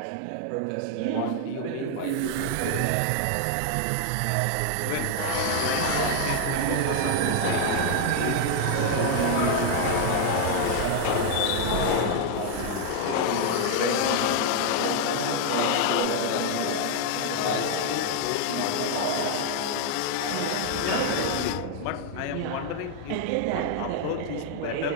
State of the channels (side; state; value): both; different; correlation 0.00